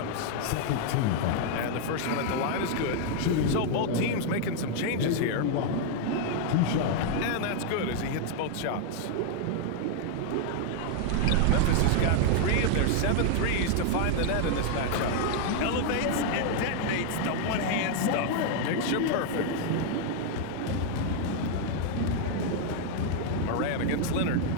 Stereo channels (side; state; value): both; different; correlation 0.00